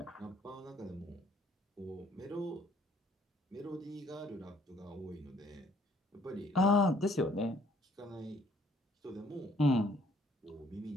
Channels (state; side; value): normal; both; correlation 0.61